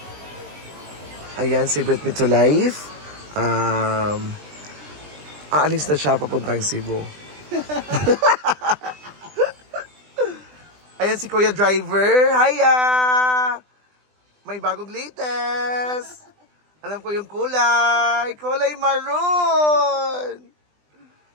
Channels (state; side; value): late; left; 20 ms